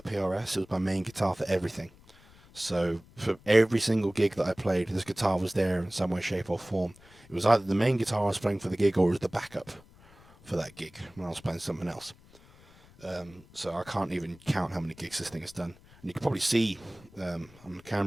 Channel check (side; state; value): left; noise; rumble, 25 dB below the sound